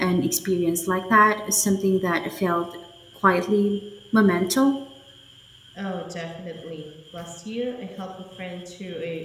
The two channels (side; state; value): both; identical; correlation 1.00